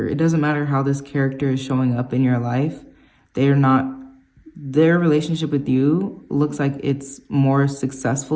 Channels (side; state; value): both; identical; correlation 1.00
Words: doesn't matter how this character is showing up in your life. They are not, their relationship with you looks like it's more